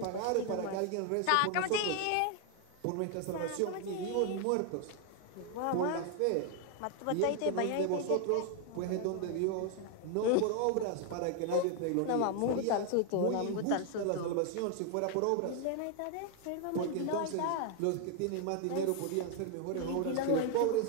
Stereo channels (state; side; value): different; both; correlation 0.00